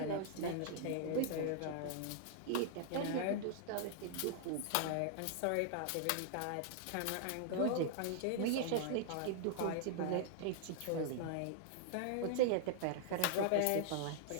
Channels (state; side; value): different; both; correlation -0.01